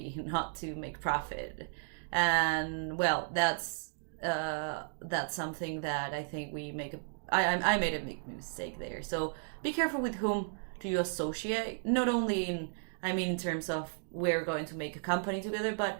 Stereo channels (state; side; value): silent; left; digital silence